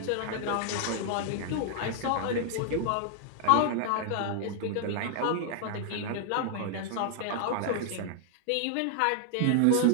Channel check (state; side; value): different; both; correlation 0.00